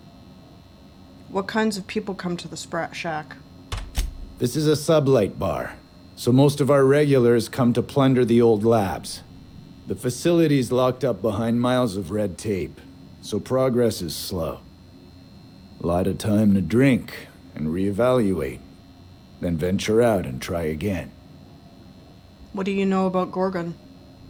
What kinds of people come to the Sprat Shack? This is a sublight bar, so most of our regulars come to plunder the old labs. The facility's locked up behind miles of red tape, so progress is slow. A lot of time to drink and reevaluate, then venture out and try again. What do you know about Gorgon?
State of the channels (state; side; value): identical; both; correlation 1.00